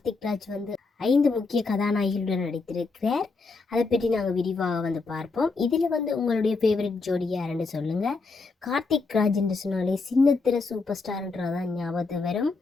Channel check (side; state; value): right; quieter; 4.0 dB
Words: ராஜ் 5 முக்கிய கதாநாயகிகளுடன் நடித்திருக்கிறார். அதை பற்றி நாங்கள் விரிவாக பார்ப்போம். இதில் உங்களுடைய ஃபேவரட் ஜோடி யாருன்னு சொல்லுங்க. கார்த்திக் ராஜ் என்று சொன்னாலே சின்னத்திர சூப்பர் ஸ்டார்ன்றதான் ஞாபகத்து வரும்.